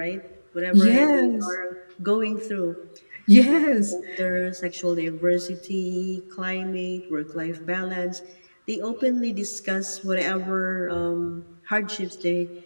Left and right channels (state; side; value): inverted; both; correlation -1.00